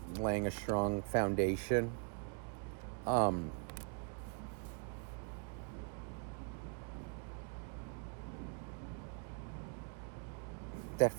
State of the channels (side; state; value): left; quieter; 39.9 dB